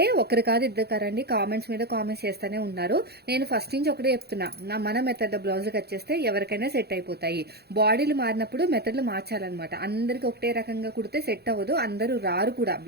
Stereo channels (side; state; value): left; late; 0.47 ms